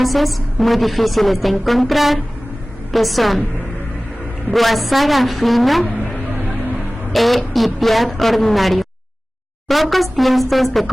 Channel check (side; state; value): both; normal; correlation 0.98